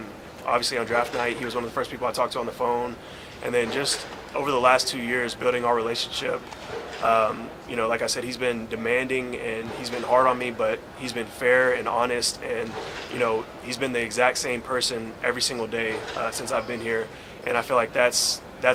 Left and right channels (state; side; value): identical; both; correlation 1.00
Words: Obviously on draft night, he was one of the first people I talked to on the phone. And then just over the last 2 years, building our relationship, like I said, he's been demanding and he's been hard on me, but he's been fair and honest. And, he's been the exact same person every single day since I've been here. And I feel like that's